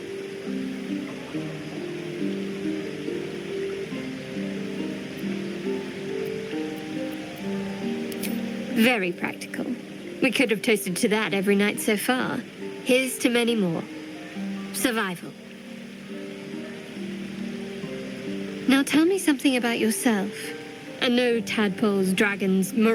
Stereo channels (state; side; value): identical; both; correlation 1.00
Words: Very practical. We could have toasted to that every night so far. Here's to many more. Survival. Now tell me something about yourself. And no tadpoles, dragons,